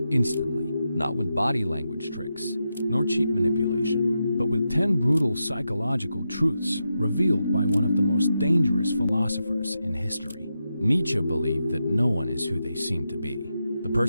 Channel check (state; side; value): inverted; both; correlation -0.87